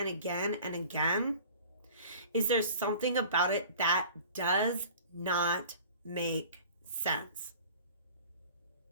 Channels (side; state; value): both; inverted; correlation -0.45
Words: again and again, is there's something about it that does not make sense.